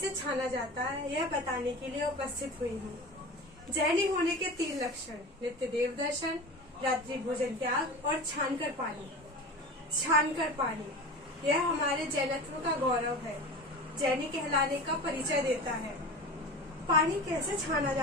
छाना जाता है यह बताने के लिए उपस्थित हुई हूँ। जैनी होने के 3 लक्षण: नित्य देव दर्शन, रात्रि भोजन त्याग और छानकर पानी। छानकर पानी यह हमारे जैनत्व का गौरव है, जैनी कहलाने का परिचय देता है। पानी कैसे छाना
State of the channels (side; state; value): both; normal; correlation 0.31